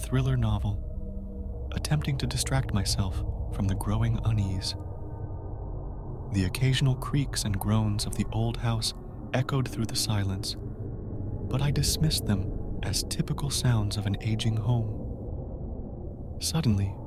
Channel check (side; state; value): both; identical; correlation 1.00